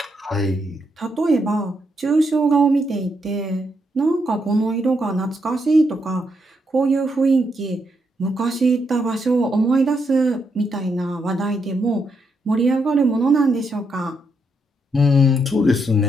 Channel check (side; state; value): both; normal; correlation 0.79